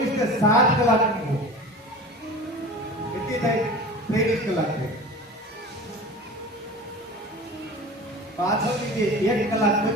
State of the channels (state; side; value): normal; both; correlation 0.36